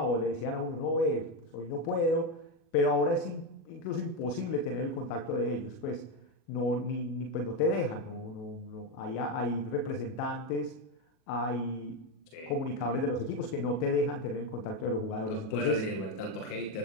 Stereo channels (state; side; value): late; right; 37 ms